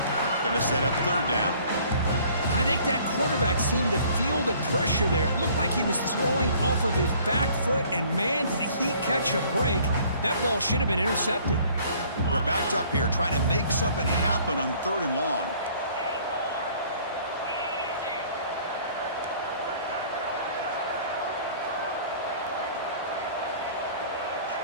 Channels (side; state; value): both; inverted; correlation -0.55